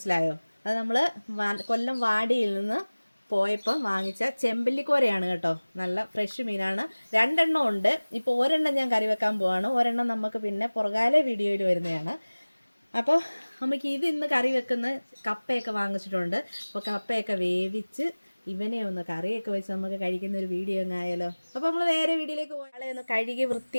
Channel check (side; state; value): both; inverted; correlation -1.00